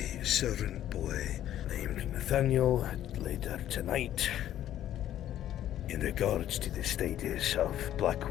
servant boy named Nathaniel later tonight in regards to the status of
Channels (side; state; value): right; quieter; 12.0 dB